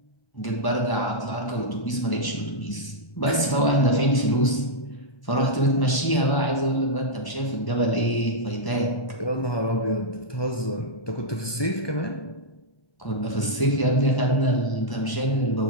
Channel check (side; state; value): right; late; 1.0 ms